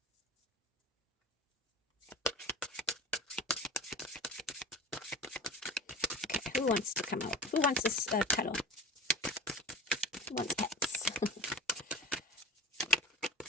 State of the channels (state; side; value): normal; both; correlation 0.34